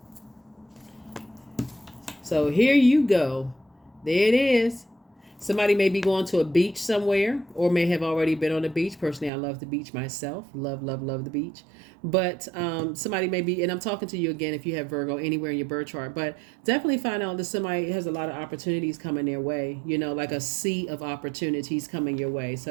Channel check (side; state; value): left; drops out; at 9.3 s